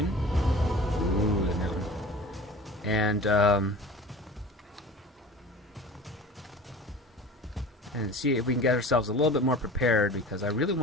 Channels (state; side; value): normal; both; correlation 0.40